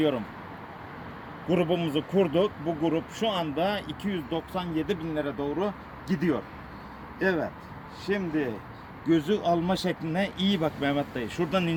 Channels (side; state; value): both; identical; correlation 1.00